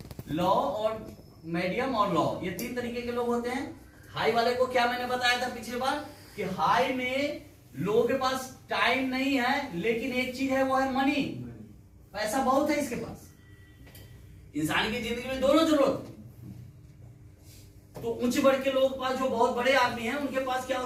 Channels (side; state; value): both; identical; correlation 1.00